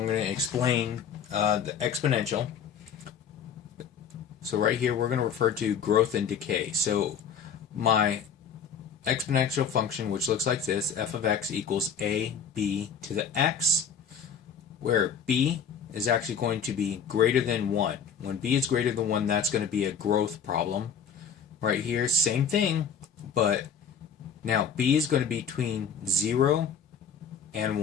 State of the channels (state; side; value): quieter; right; 6.8 dB